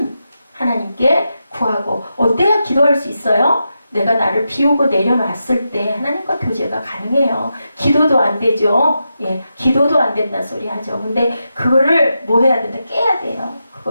하나님께 구하고 어때야 기도할 수 있어요? 내가 나를 비우고 내려놨을 때 하나님과 교제가 가능해요. 기도도 안 되죠. 예, 기도도 안 된다 소리 하죠. 근데 그거를 뭐 해야 된다? 깨야 돼요.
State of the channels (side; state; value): both; inverted; correlation -0.87